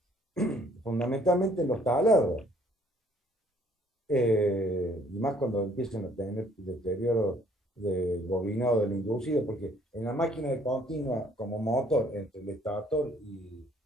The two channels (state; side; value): normal; both; correlation 0.61